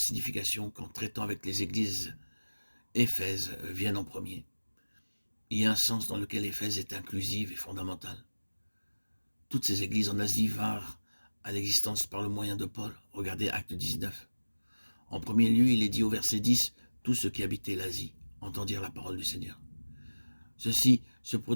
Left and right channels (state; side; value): inverted; both; correlation -1.00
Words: qu'en traitant avec les églises, Éphèse vienne en premier. Il y a un sens dans lequel Éphèse est inclusive et fondamentale. Toutes ces églises en Asie vinrent à l'existence par le moyen de Paul. Regardez Acte 19. En premier lieu, il est dit au verset 10, « Tous ceux qui habitaient l'Asie entendirent la parole du Seigneur. » Ceci se